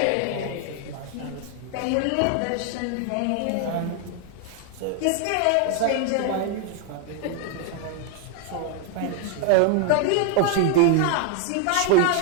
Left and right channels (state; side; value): different; both; correlation 0.01